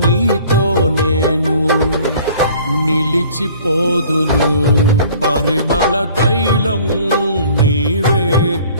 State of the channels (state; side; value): inverted; both; correlation -0.52